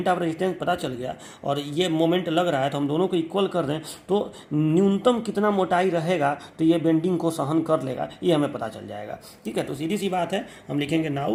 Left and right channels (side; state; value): both; identical; correlation 1.00